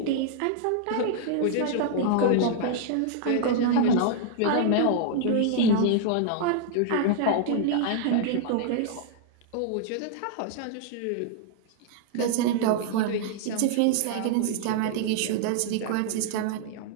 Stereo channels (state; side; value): different; both; correlation 0.00